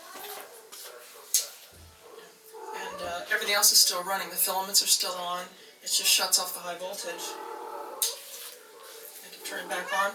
And everything else is still running. The filaments are still on. It just shuts off the high voltage. I can turn it back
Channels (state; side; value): identical; both; correlation 1.00